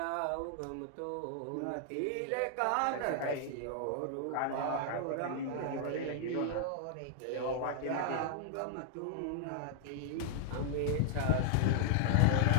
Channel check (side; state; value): both; different; correlation -0.01